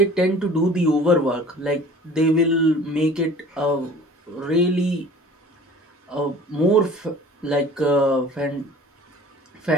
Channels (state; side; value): normal; both; correlation 0.46